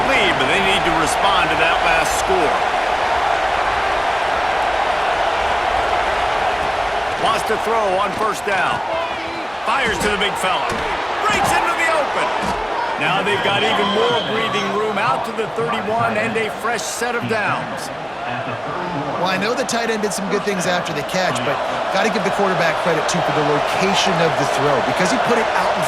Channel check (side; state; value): both; identical; correlation 1.00